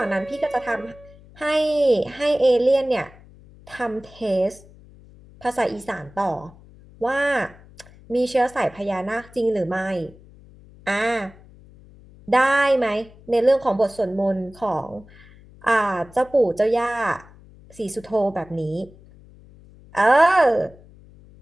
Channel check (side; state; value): left; noise; hum, 23 dB below the sound